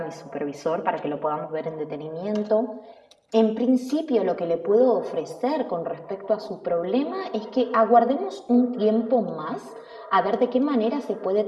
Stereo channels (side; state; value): both; identical; correlation 1.00